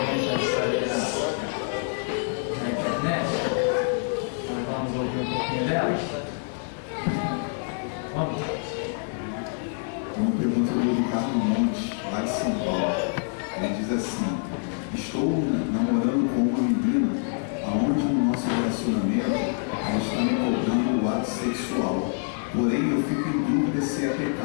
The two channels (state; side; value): silent; right; 58 dB below the other